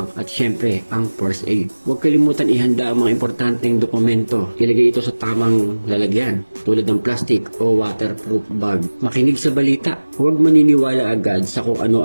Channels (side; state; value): both; inverted; correlation -1.00